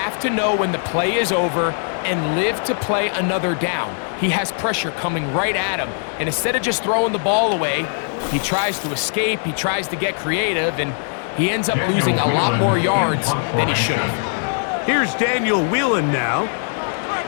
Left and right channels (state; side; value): silent; right; 59 dB below the other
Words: to know when the play is over and live to play another down. He has pressure coming right at him, and instead of just throwing the ball away, he tries to escape, he tries to get creative, and he ends up losing a lot more yards than he should have. Here's Daniel Whelan now,